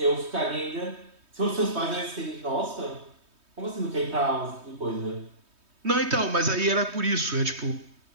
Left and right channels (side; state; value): left; late; 3.2 ms